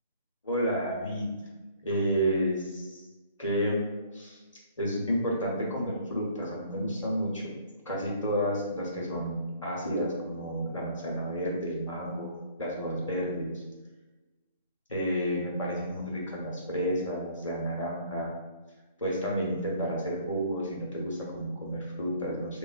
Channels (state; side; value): inverted; both; correlation -0.57